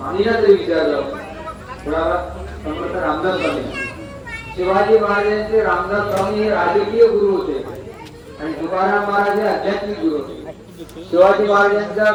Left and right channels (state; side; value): identical; both; correlation 1.00